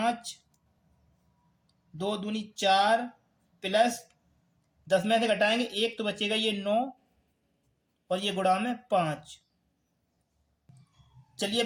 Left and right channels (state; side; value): identical; both; correlation 1.00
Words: 2 दूनी 4 प्लस 10 में से घटाएंगे 1 तो बचेगा ये 9 और ये गुणा में 5। चलिए